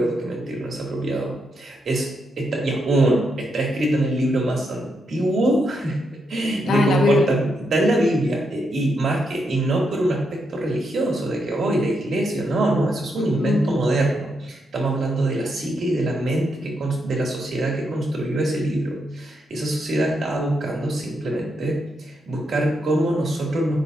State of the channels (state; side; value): normal; both; correlation 0.81